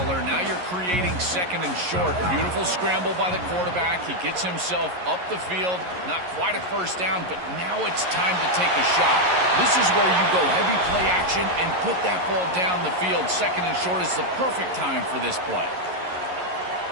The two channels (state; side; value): late; left; 11 ms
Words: Now you're creating second and short. Beautiful scramble by the quarterback. He gets himself up the field. Not quite a first down, but now it's time to take a shot. This is where you go heavy play action and put that ball down the field. Second and short is the perfect time for this play.